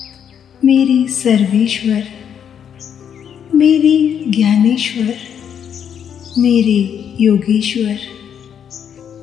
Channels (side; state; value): right; quieter; 8.4 dB